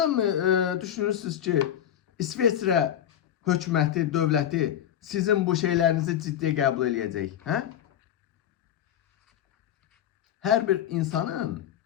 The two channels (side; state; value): right; quieter; 10.5 dB